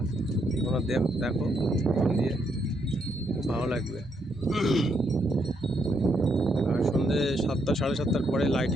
তোমরা দেখো ফোন দিয়ে, ভালো লাগবে। আর সন্ধ্যে 7টা 7:30টার পরে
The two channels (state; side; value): normal; both; correlation 0.76